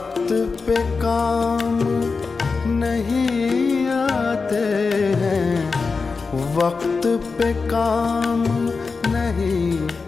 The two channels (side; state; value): right; quieter; 4.6 dB